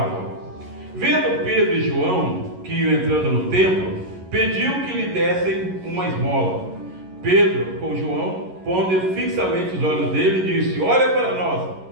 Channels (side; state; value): left; late; 11 ms